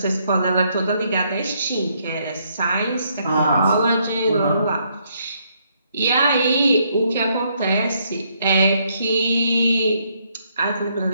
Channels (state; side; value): inverted; both; correlation -0.72